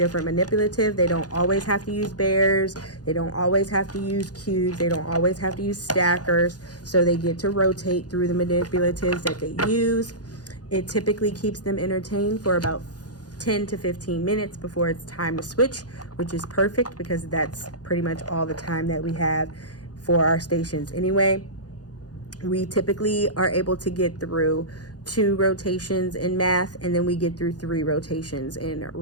manipulative. They don't always have to use bears, they don't always have to use cubes, they don't always have to use stackers. So they get to rotate through the manipulatives that they use. It typically keeps them entertained for about 10 to 15 minutes before it's time to switch, which is perfect because that's pretty much all the time that we have for our stations anyway. We typically are able to get through 2 rotations in math, and then we get through 3 rotations in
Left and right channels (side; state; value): right; late; 0.68 ms